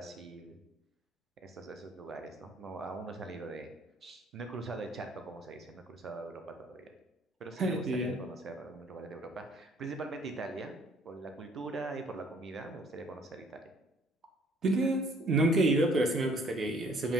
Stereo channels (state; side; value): normal; both; correlation 0.59